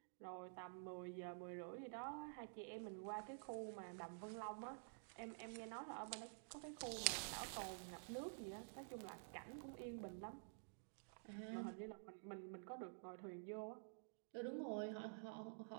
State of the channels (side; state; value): left; silent; digital silence